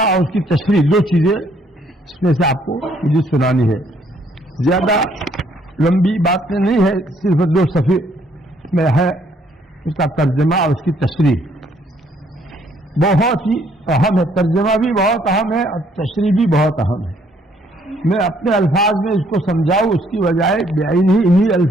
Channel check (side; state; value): both; normal; correlation 0.66